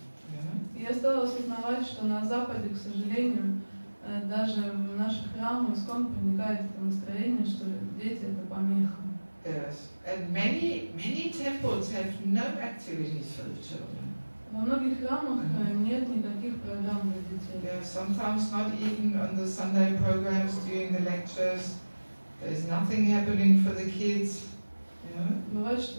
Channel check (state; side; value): inverted; both; correlation -1.00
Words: Я стала осознавать, что на Западе, к сожалению, даже в наших храмах ISKCON проникает это настроение, что дети это помеха. Yes, and many temples have no activities for the children. Во многих храмах нет никаких программ для детей. Yeah, sometimes not even on the Sunday programs during the lectures. There's nothing happening for the kids. Бывает,